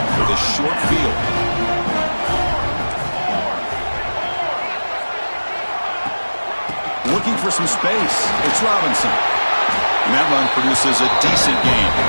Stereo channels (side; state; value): both; inverted; correlation -1.00